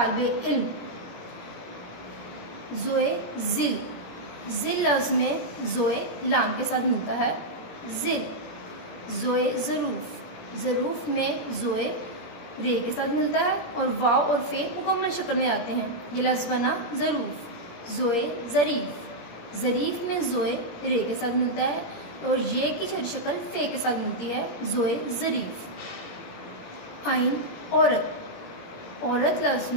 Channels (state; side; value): late; right; 17 ms